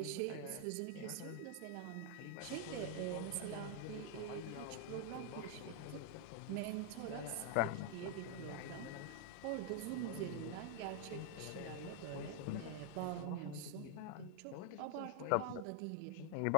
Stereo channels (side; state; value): both; different; correlation 0.00